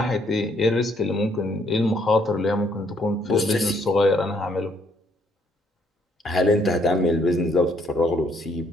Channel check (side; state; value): both; normal; correlation 0.68